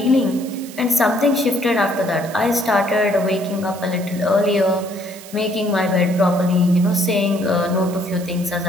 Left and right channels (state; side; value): noise; right; hiss, 17 dB below the sound